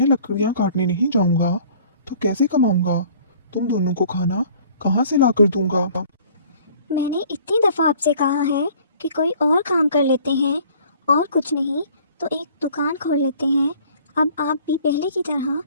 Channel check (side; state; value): both; inverted; correlation -0.53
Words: लकड़ियाँ काटने नहीं जाऊंगा तो कैसे कमाऊंगा? तुम दोनों को खाना कहाँ से लाकर दूंगा? मैंने इतनी दफ़ा आपसे कहा है कि कोई और काम कर लेते हैं, और कुछ नहीं तो एक दुकान खोल लेते हैं। अब आप भी पहले की तरह